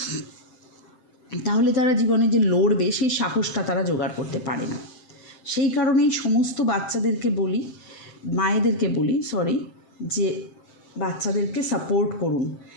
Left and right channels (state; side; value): late; right; 7.7 ms